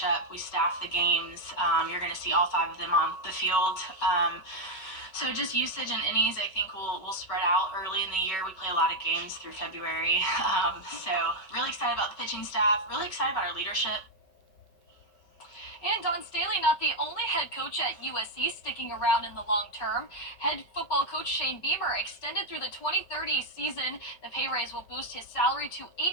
We staff the games. You're going to see all 5 of them on the field. So just usage and innings, I think, will spread out early in the year. We play a lot of games through February. So really excited about the pitching staff. Really excited about our leadership. And Don Staley, not the only head coach at USC sticking around in the long term. Head football coach Shane Beamer extended through the 2030 season. The pay raise will boost his salary to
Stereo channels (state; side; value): late; right; 5.3 ms